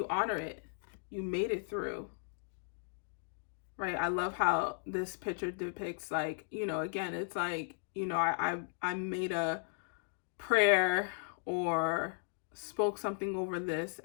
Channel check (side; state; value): right; silent; digital silence